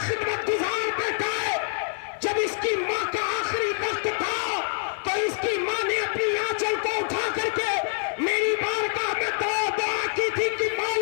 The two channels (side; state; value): right; silent; digital silence